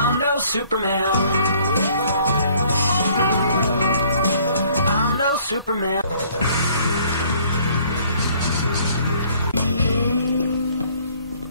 no Superman. I'm no Superman.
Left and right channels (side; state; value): both; inverted; correlation -0.59